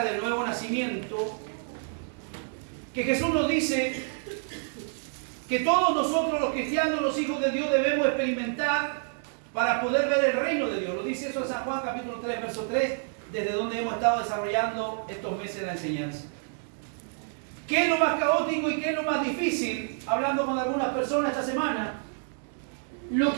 del nuevo nacimiento, que Jesús nos dice que todos nosotros los cristianos, los hijos de Dios, debemos experimentar para poder ver el reino de Dios. Lo dice eso en San Juan capítulo 3, verso 3, desde donde hemos estado desarrollando estos meses la enseñanza. ¿Qué es lo más caótico y qué es lo más difícil? Hablando con algunas personas esta semana, lo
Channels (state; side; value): silent; left; digital silence